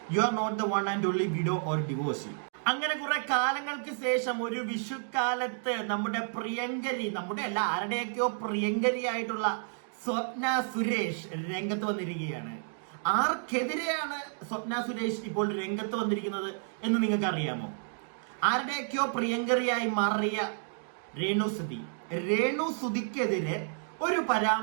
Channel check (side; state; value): left; silent; digital silence